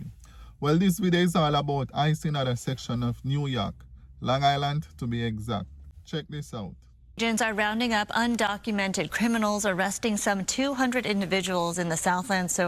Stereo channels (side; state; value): both; identical; correlation 1.00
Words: Well, this video is all about ICE in another section of New York, Long Island to be exact. Check this out. Agents are rounding up undocumented criminals, arresting some 200 individuals in the Southland